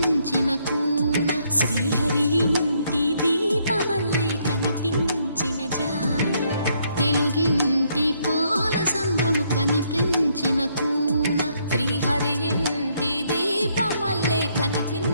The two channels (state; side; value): inverted; both; correlation -0.72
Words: కూన శ్రీహరి ఇంటి దీపమల్లే కనిపించిన జాడ తెలుగింటి పాల సంద్రము కనిపించిన కూన శ్రీహరి ఇంటి దీపమల్లే